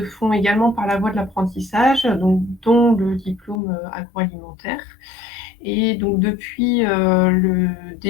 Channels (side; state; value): right; drops out; at 3.6 s